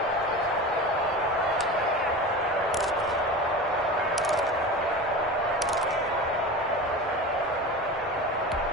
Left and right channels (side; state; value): both; normal; correlation 0.30